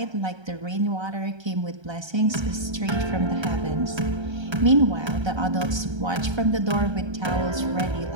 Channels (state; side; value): late; left; 1.3 ms